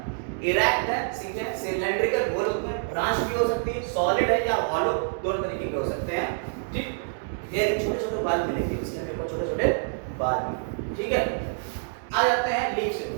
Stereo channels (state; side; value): silent; left; digital silence